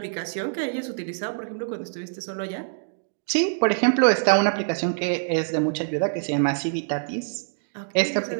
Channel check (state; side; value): silent; left; digital silence